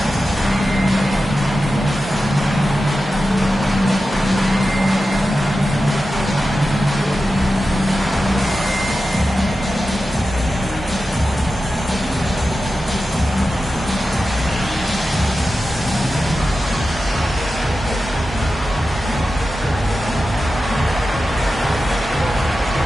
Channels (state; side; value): normal; both; correlation 0.92